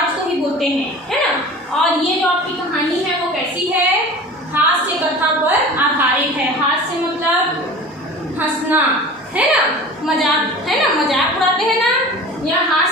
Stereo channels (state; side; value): normal; both; correlation 0.38